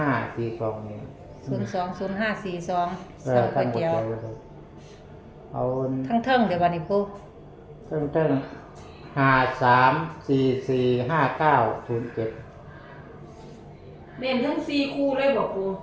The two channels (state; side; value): identical; both; correlation 1.00